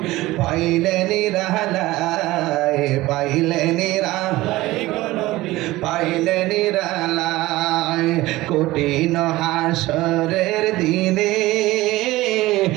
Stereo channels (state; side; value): quieter; left; 18.3 dB